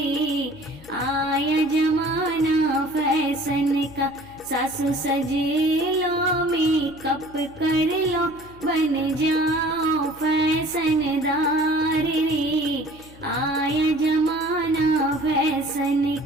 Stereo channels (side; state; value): left; noise; hum, 22 dB below the sound